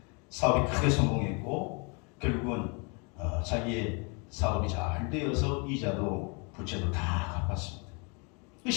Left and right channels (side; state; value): right; quieter; 33.6 dB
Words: 사업이 크게 성공했고 결국은 자기의 사업이 잘 되어서 이자도 부채도 다 갚았습니다.